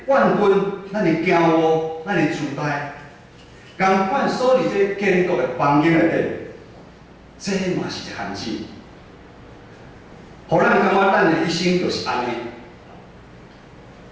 怨恨、咱的骄傲、咱的自大，共款锁伫这建国的房间内底，这嘛是一限制。互咱感觉咱的一生就是安尼，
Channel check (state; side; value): identical; both; correlation 1.00